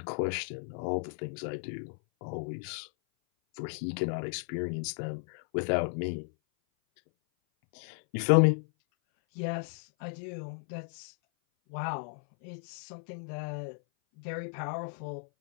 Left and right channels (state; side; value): silent; right; 55 dB below the other